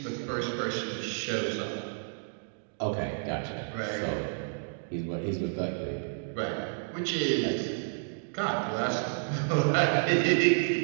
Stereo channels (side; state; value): left; silent; digital silence